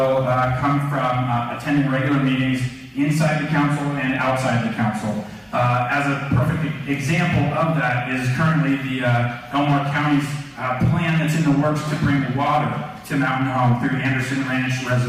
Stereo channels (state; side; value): identical; both; correlation 1.00